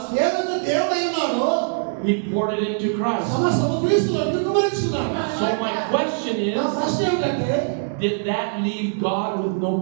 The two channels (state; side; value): silent; left; digital silence